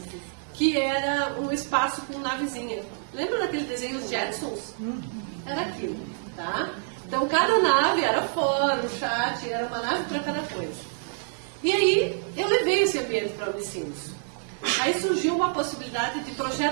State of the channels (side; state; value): left; silent; digital silence